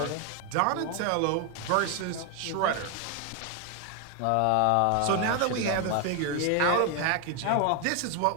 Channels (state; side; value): different; both; correlation 0.01